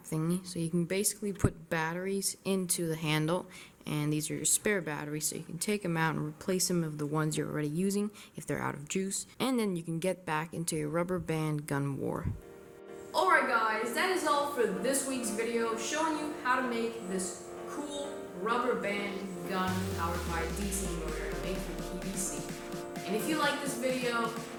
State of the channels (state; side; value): identical; both; correlation 1.00